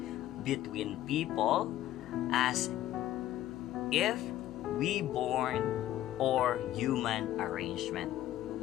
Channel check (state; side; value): quieter; right; 13.5 dB